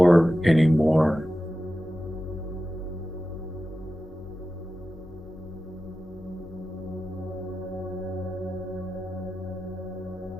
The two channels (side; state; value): both; normal; correlation 0.93